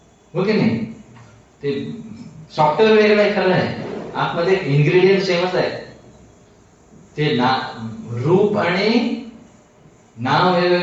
हो की नाही? ते सॉफ्टवेअर वेगळं आहे, खरं आहे, आतमध्ये इन्ग्रेडियंट सेमच आहे. ते रूप आणि नाव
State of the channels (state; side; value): identical; both; correlation 1.00